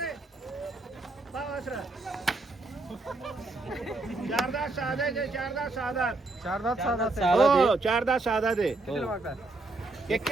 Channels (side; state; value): left; quieter; 3.1 dB